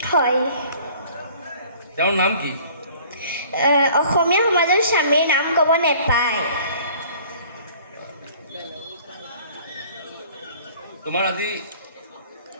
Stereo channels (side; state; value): both; inverted; correlation -0.51